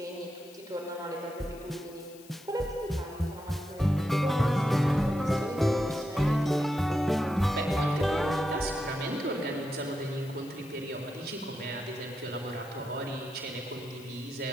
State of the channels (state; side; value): noise; left; hiss, 22 dB below the sound